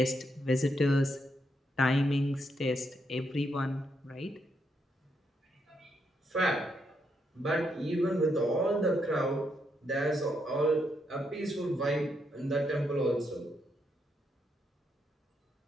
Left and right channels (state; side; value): normal; both; correlation 0.79